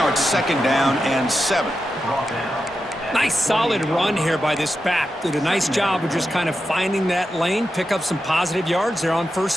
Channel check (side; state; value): both; normal; correlation 0.89